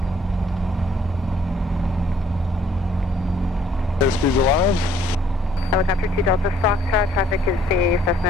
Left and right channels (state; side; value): normal; both; correlation 0.63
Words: Airspeed's alive. Helicopter 2 Delta Foxtrot, traffic is the